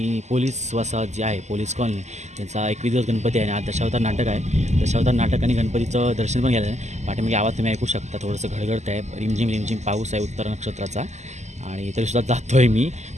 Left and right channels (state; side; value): late; left; 0.33 ms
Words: पोलीस वसाहत जी आहे, पोलीस कॉलनी, त्यांचा 21 दिवस गणपती आहे आणि आज दशावतार नाटक आहे. दशावतार नाटक आणि गणपतीचं दर्शन पण घ्यायला आहे. पाठीमागे आवाज तुम्ही ऐकू शकता, थोडंसं घडघडत आहे, रिमझिम रिमझिम पाऊस आहे उत्तर नक्षत्राचा. आणि तरीसुद्धा जातो आहे मी,